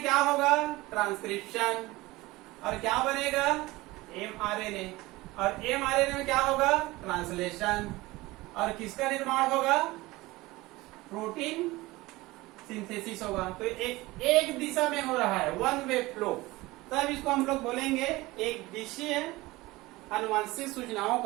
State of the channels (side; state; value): left; quieter; 20.2 dB